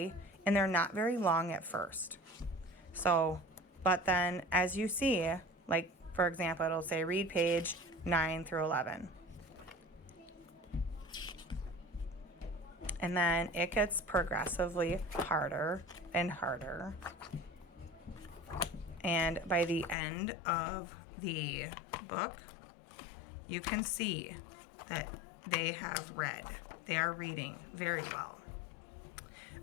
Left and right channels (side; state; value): right; drops out; at 20.0 s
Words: and they're not very long at first. So, but then as you see, like for example, it'll say read page 9 through 11. And then it gets progressively harder and harder. And by the end of the book, you can see that they have read. They are reading very well.